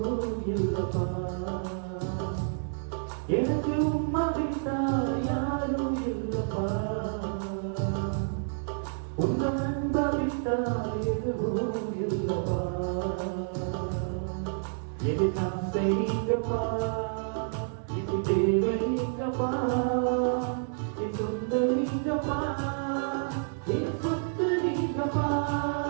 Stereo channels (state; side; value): silent; left; digital silence